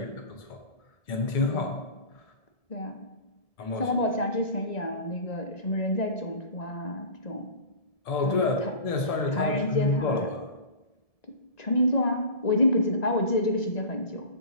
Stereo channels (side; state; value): right; late; 1.7 ms